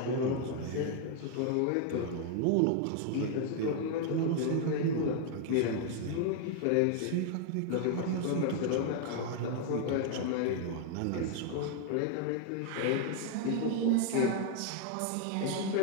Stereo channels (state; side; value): different; both; correlation 0.00